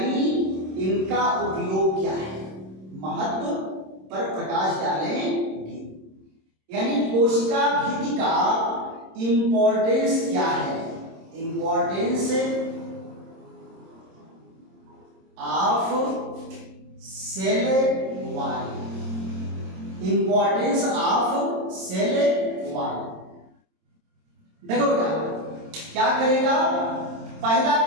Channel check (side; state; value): left; late; 26 ms